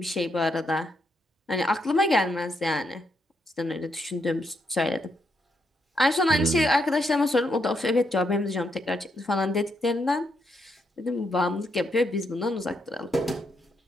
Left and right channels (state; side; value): normal; both; correlation 0.78